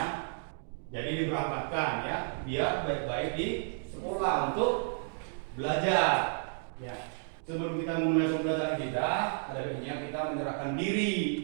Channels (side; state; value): left; silent; digital silence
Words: Jadi diberangkatkan, ya, biar baik-baik di sekolah untuk belajar. Ya. Sebelum kita memulai pembelajaran kita, ada baiknya kita menyerahkan diri